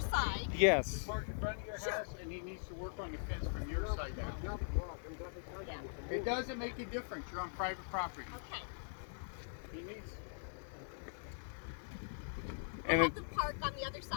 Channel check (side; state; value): right; silent; 50 dB below the other